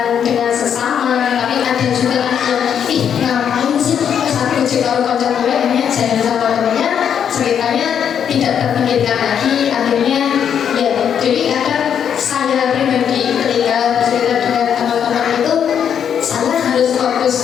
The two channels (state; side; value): quieter; right; 8.3 dB